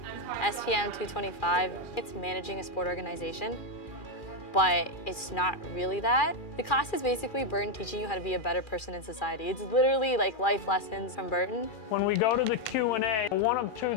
SPM 225. It's managing a sport organization, but it's not really that. The class is basically Burton teaching you how to be a better person in society. It's literally like life lessons from Burton. When we go to the Q&A, one of two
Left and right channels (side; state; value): right; late; 2.4 ms